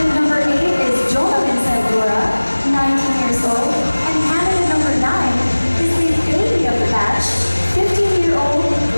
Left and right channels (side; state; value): both; inverted; correlation -1.00